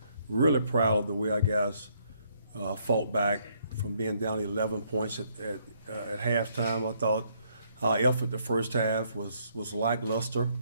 Really proud of the way our guys fought back from being down 11 points at halftime. I thought our effort the first half was lackluster,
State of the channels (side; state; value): both; inverted; correlation -0.70